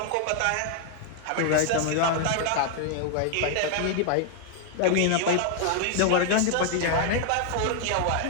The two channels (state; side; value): different; both; correlation 0.00